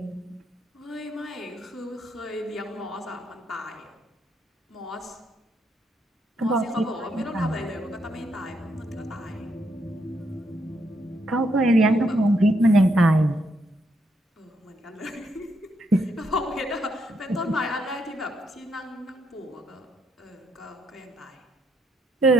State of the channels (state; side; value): normal; both; correlation 0.76